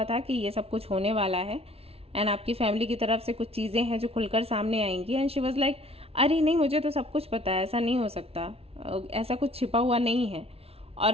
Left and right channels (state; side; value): late; left; 0.29 ms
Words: था कि ये सब कुछ होने वाला है, एंड आपकी फैमिली की तरफ से कुछ चीज़ें हैं जो खुलकर सामने आएंगी। एंड शी वाज लाइक, अरे नहीं, मुझे तो सब कुछ पता है, ऐसा नहीं हो सकता, ऐसा कुछ छिपा हुआ नहीं है।